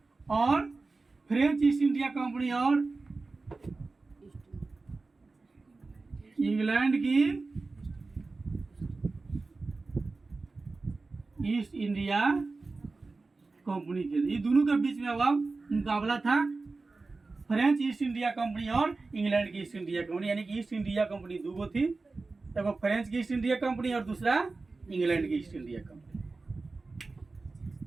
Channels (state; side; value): quieter; left; 3.7 dB